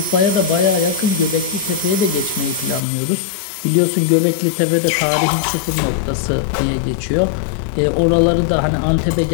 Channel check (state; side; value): drops out; right; at 2.8 s